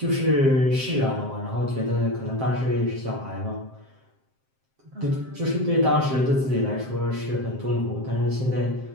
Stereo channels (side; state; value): left; late; 7.6 ms